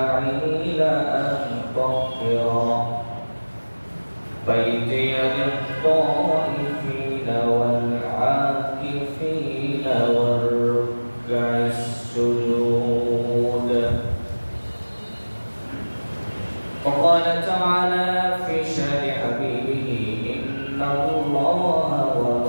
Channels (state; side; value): inverted; both; correlation -1.00